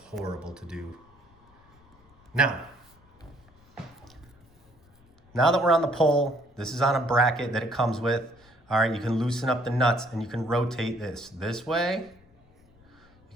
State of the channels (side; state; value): left; noise; rumble, 30 dB below the sound